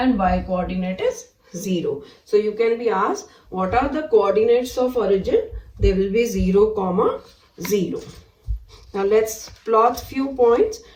y coordinate is 0. So you can be asked, what are the coordinates of origin? They will be 0, 0. Now let's plot few points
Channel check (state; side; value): identical; both; correlation 1.00